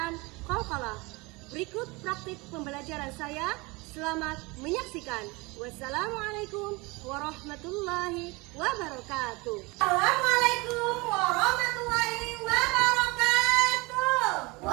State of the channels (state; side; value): quieter; left; 25.0 dB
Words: qalqalah. Berikut praktik pembelajaran saya. Selamat menyaksikan. Wassalamualaikum warahmatullahi wabarakatuh. Assalamualaikum warahmatullahi wabarakatuh.